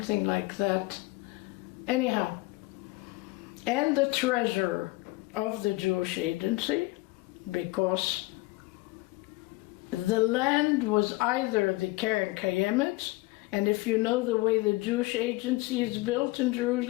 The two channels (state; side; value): quieter; right; 22.1 dB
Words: like that. Anyhow, and the treasurer of the Jewish agency, because the land was either the Keren Kayemet, and if you know the way the Jewish agency is built in